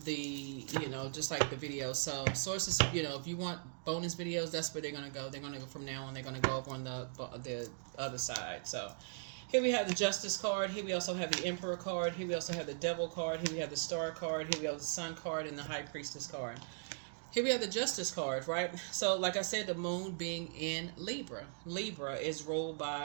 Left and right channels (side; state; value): left; silent; digital silence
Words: just like the video. So sources, if you want bonus videos, that's where they're going to go. They're going to go from now on. They're going to go over on the other side. So here we have the Justice card. Here we also have the Emperor card. Here we also have the Devil card. Here we have the Star card. Here we have the Sun card and the High Priestess card. Here we have the Justice card, right? So like I said, the moon being in Libra. Libra is ruled